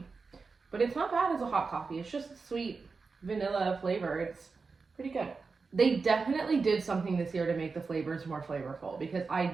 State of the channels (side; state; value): left; quieter; 4.5 dB